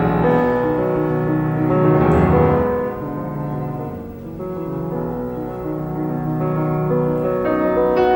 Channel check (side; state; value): both; identical; correlation 1.00